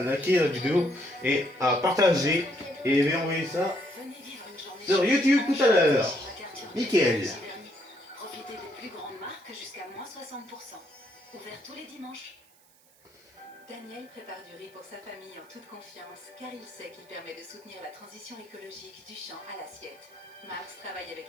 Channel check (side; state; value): right; noise; hiss, 29 dB below the sound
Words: liker la vidéo et à partager. Et je vais envoyer ça sur YouTube tout à l'heure. Nickel. Profitez des plus grandes marques jusqu'à moins 60%. Ouvert tous les dimanches. Daniel prépare du riz pour sa famille en toute confiance, car il sait qu'il permet de soutenir la transition écologique du champ à l'assiette. Max travaille avec